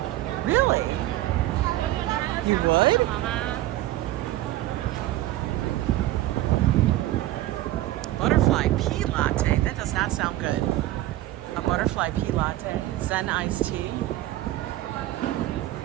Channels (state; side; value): quieter; left; 15.7 dB